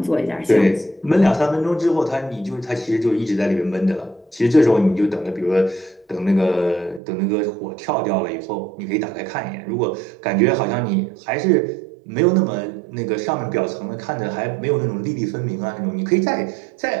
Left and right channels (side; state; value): left; drops out; at 7.0 s